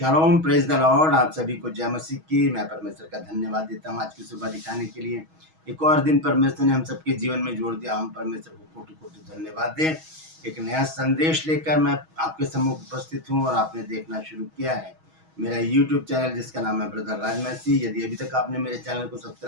Shalom, praise the Lord. आप सभी को जय मसीह की। मैं परमेश्वर का धन्यवाद देता हूँ आज की सुबह दिखाने के लिए। एक और दिन परमेश्वर ने हम सबके जीवन में जोड़ दिया। हम परमेश्वर को कोटि कोटि धन्यवाद दें। एक नया संदेश लेकर मैं आपके सम्मुख उपस्थित हूँ और आपने देखना शुरू किया है मेरा यूट्यूब चैनल जिसका नाम है ब्रदर राज मसीह। यदि अभी तक आपने मेरे चैनल को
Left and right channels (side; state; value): left; late; 6.3 ms